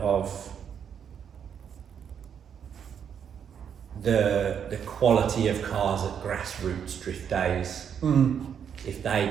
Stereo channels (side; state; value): left; quieter; 8.0 dB